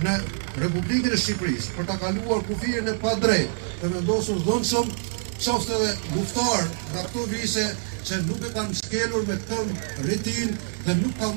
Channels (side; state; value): left; silent; digital silence